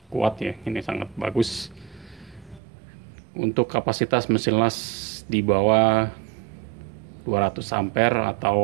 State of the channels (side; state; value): left; drops out; at 2.6 s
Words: kuat ya, ini sangat bagus. Untuk kapasitas mesin las di bawah 200 ampere